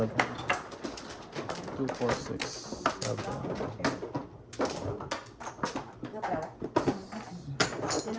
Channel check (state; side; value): identical; both; correlation 1.00